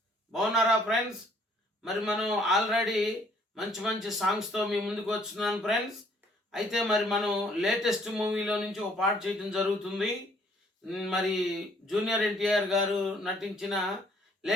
బాగున్నారా friends? మరి మనం already మంచి మంచి సాంగ్స్తో మీ ముందుకు వస్తున్నాను ఫ్రెండ్స్. అయితే మరి మనం లేటెస్ట్ మూవీలో నుంచి ఒక పాట చేయడం జరుగుతుంది. మరి జూనియర్ ఎన్టీఆర్ గారు నటించిన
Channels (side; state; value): both; normal; correlation 0.62